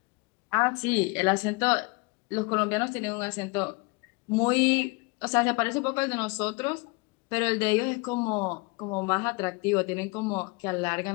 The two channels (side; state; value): right; quieter; 28.0 dB